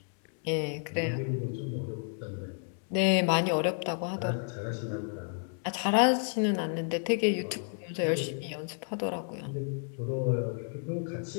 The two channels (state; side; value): silent; right; 57 dB below the other